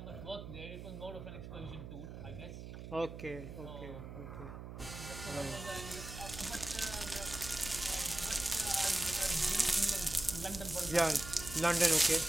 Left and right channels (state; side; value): noise; right; hum, 10 dB below the sound